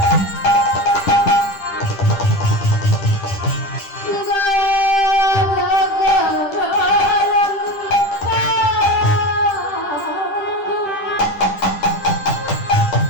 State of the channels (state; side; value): late; right; 10 ms